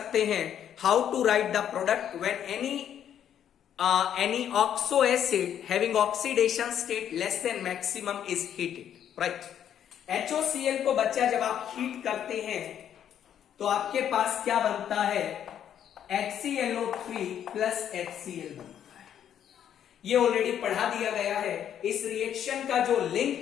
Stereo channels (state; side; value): quieter; right; 9.7 dB